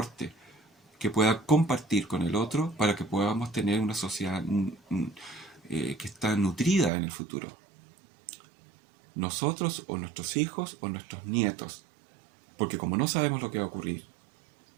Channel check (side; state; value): left; drops out; at 6.9 s